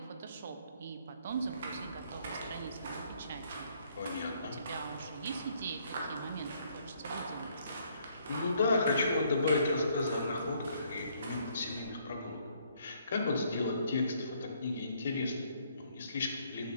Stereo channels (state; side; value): inverted; both; correlation -0.67